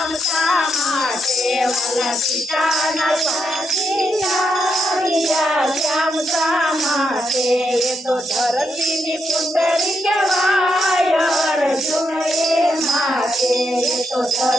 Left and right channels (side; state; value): both; normal; correlation 0.81